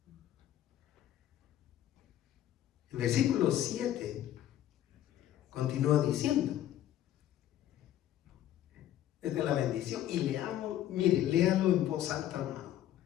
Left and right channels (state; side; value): quieter; right; 12.2 dB